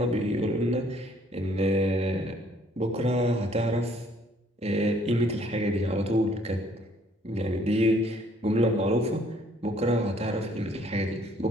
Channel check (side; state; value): both; normal; correlation 0.62